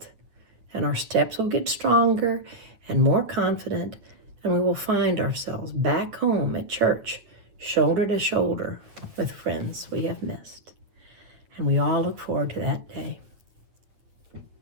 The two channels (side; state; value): left; late; 9.0 ms